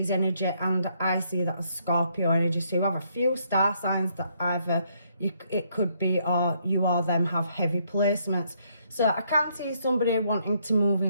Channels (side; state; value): both; inverted; correlation -0.71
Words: energy, and I see that as Scorpio energy. So you have a few star signs that either it could be, or you or them have heavy placements. So I can't see somebody wanting to move